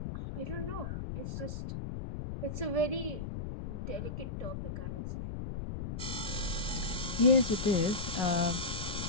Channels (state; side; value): noise; left; rumble, 5 dB below the sound